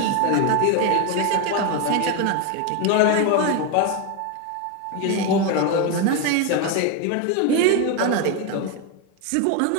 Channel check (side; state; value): both; different; correlation 0.02